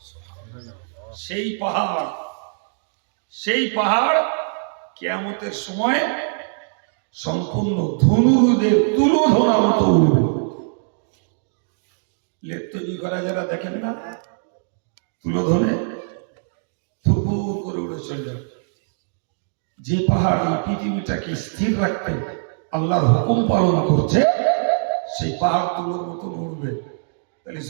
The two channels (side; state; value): left; silent; digital silence